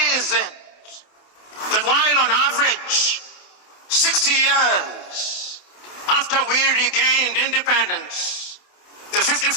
is it that while on average 60 years after we regained independence, the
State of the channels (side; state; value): right; late; 28 ms